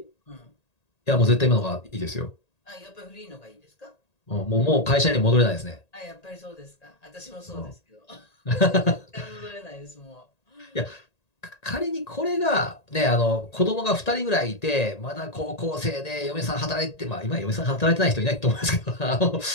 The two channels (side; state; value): right; late; 1.8 ms